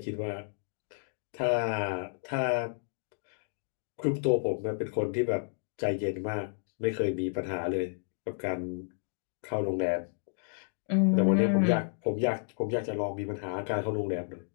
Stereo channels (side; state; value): right; silent; digital silence